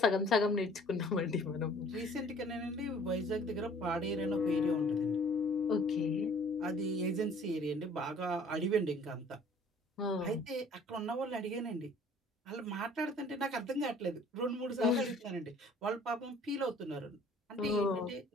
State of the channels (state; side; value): normal; both; correlation 0.53